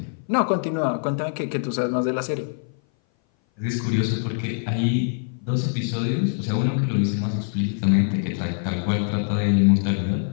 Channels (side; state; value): right; silent; 58 dB below the other